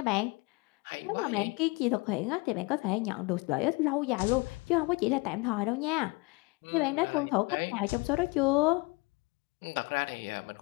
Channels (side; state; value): right; quieter; 26.9 dB